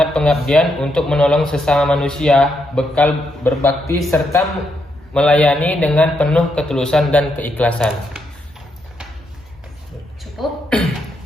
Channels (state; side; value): normal; both; correlation 0.79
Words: pengabdian untuk menolong sesama manusia, bekal berbakti serta melayani dengan penuh ketulusan dan keikhlasan. Cukup.